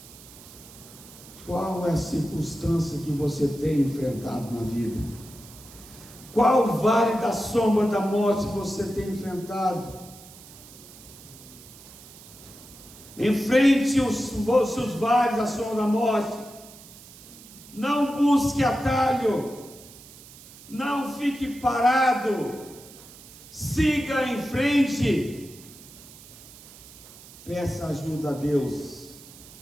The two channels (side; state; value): right; noise; hiss, 19 dB below the sound